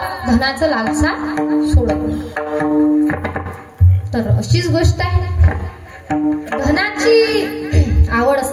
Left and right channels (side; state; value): both; identical; correlation 1.00